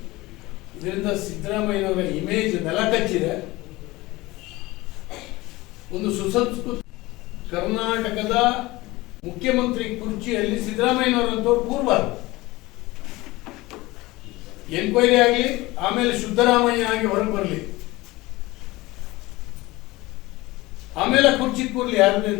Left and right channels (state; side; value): quieter; right; 20.4 dB